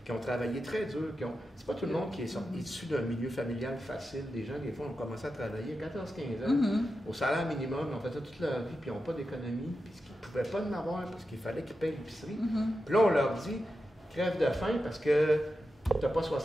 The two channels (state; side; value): normal; both; correlation 0.90